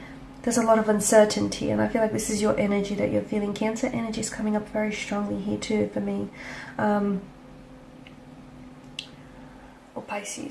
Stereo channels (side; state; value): both; identical; correlation 1.00